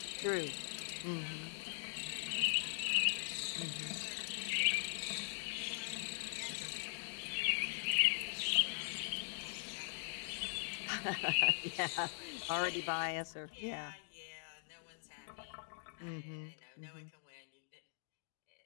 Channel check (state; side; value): silent; right; digital silence